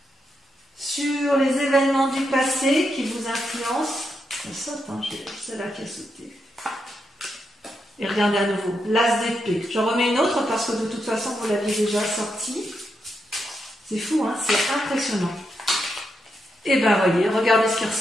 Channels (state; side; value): normal; both; correlation 0.83